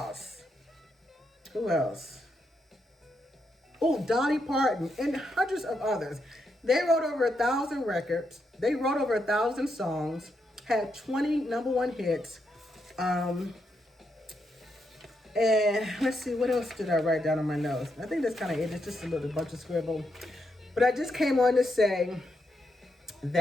Who else? Dolly Parton, and hundreds of others. They wrote over 1,000 records. They wrote over 1,000 songs, had 20 number 1 hits. And let's see, what else did I write down on my notes? I think that's kind of it. It's just a little bunch of scribble. But I just came on to say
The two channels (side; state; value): both; normal; correlation 0.81